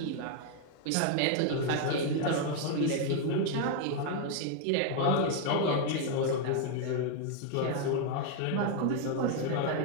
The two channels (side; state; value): both; different; correlation 0.00